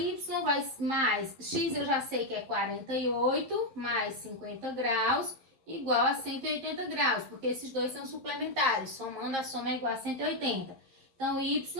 vai mais x, eu já sei que é 48, mais 50 graus, igual a 180 graus, porque esses dois são suplementares, somando a soma é igual a 180. Então, y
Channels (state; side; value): late; left; 11 ms